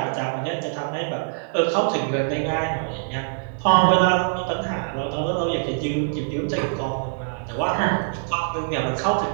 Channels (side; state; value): left; silent; digital silence